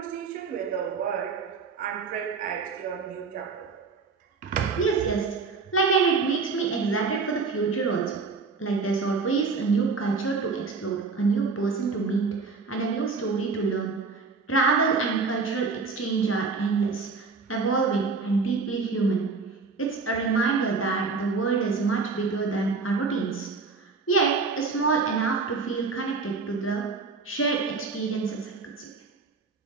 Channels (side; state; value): left; quieter; 4.5 dB